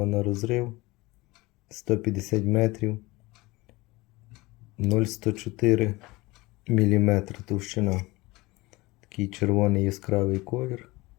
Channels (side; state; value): right; quieter; 21.8 dB